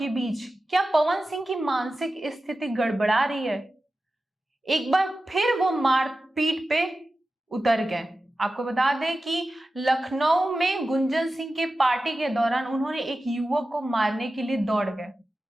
बीच क्या पवन सिंह की मानसिक स्थिति गड़बड़ा रही है? एक बार फिर वो मारपीट पे उतर गए। आपको बता दें कि लखनऊ में गुंजन सिंह के पार्टी के दौरान उन्होंने एक युवक को मारने के लिए दौड़ गए।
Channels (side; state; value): both; normal; correlation 0.94